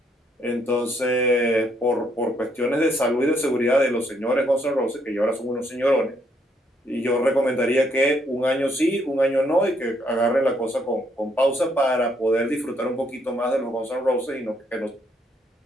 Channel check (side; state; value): both; normal; correlation 0.72